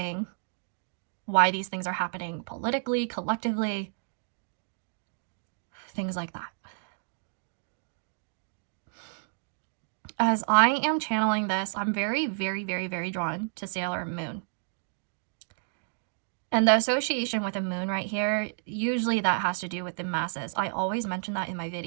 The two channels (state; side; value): silent; left; digital silence